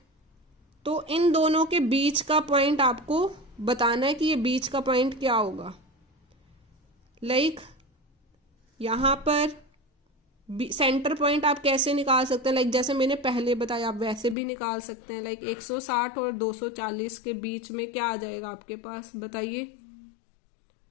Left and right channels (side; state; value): right; drops out; at 14.4 s